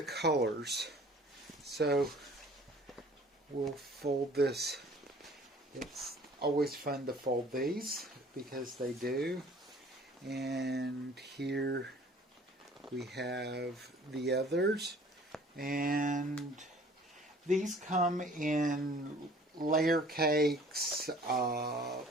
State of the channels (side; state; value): both; normal; correlation 0.51